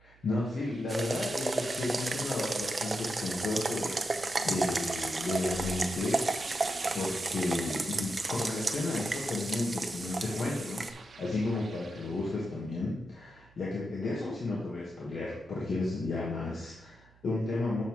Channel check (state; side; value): noise; right; hum, 28 dB below the sound